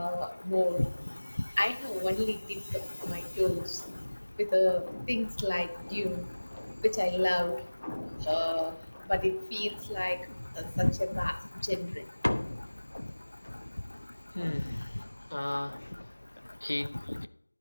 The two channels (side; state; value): both; inverted; correlation -1.00